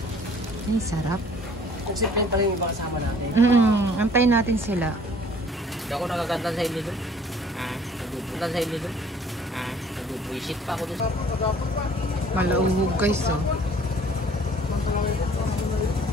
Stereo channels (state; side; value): normal; both; correlation 0.54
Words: Ay, sarap. Nagsiplain pa rin yung iba kasama natin. Antayin natin sila. Hindi ako nakakanta sa inyo doon. Nagpupunta sa inyo doon. Nagpupuisit pa ako doon. Malauhog guys,